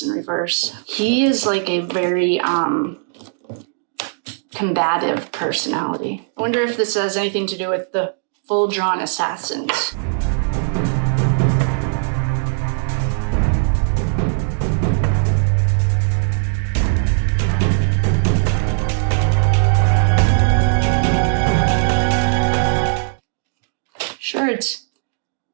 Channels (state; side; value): silent; left; digital silence